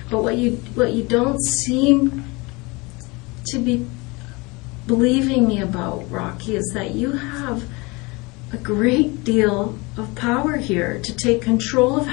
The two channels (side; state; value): right; quieter; 25.8 dB